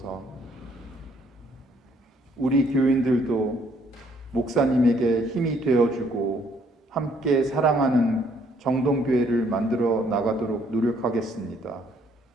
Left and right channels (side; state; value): both; normal; correlation 0.66